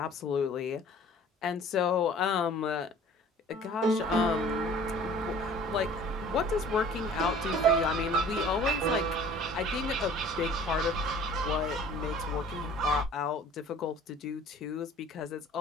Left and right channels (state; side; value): normal; both; correlation 0.48